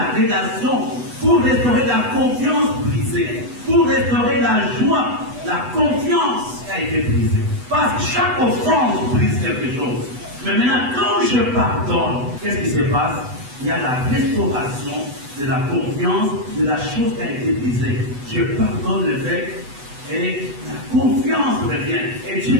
relation, pour restaurer la confiance brisée, pour restaurer la joie, la confiance qui a été brisée. Parce que chaque offense brise quelque chose. Mais maintenant, quand je pardonne, qu'est-ce qui se passe? Il y a la restauration de la confiance, de la chose qui a été brisée. Je pardonne l'évêque et la confiance revient. Et Dieu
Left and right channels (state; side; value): late; left; 8.1 ms